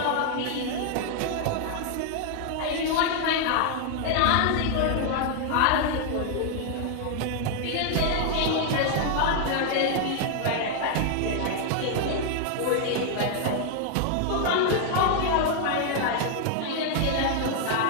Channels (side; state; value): both; different; correlation 0.00